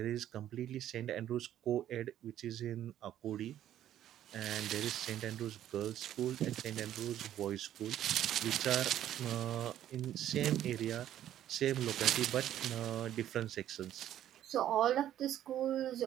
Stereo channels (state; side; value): quieter; left; 11.6 dB